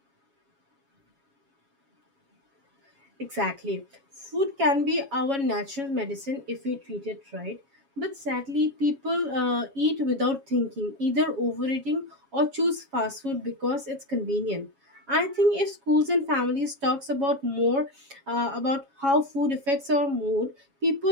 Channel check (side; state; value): left; late; 7.2 ms